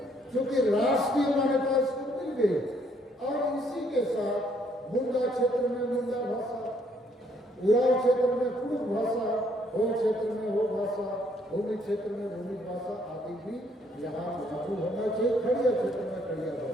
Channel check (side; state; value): both; normal; correlation 0.68